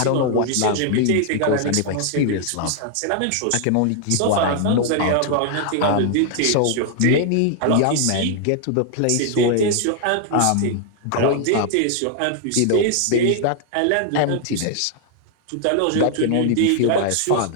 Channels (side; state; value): both; different; correlation 0.00